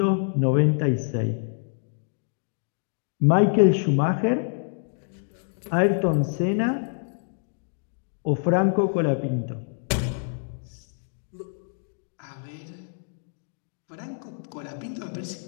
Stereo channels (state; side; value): silent; right; digital silence